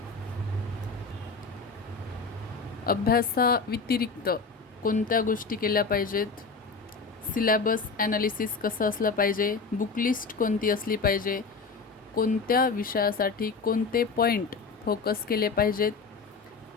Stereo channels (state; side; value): quieter; right; 4.6 dB